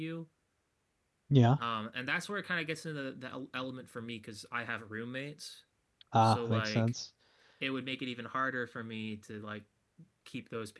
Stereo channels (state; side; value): identical; both; correlation 1.00